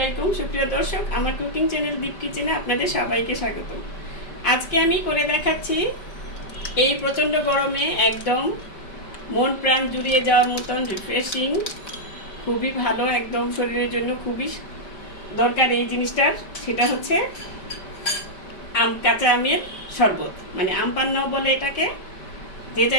সুপ্রিয় দর্শক, আমার কুকিং চ্যানেল দীপ কিচেনে আপনাদের সবাইকে স্বাগত। আজকে আমি করে দেখাচ্ছি এই প্রচণ্ড গরমে একদম মন প্রাণ জুড়িয়ে যাওয়ার মতন রিফ্রেশিং, খুবই ভালো, একদম শরীরের জন্য খুবই দরকার এই জিনিসটার। সেটা হচ্ছে কাঁচা আমের শরবত, মানে আম পান্নাও বলে এটাকে, যে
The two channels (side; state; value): right; late; 5.1 ms